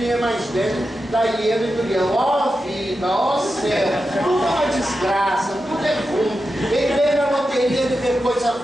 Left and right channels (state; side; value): normal; both; correlation 0.90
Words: é mais velho, da hiena e do leão. Ó vida, ó céu, tudo é uma desgraça, tudo é ruim. Ele vê na loteria, ele vê coisa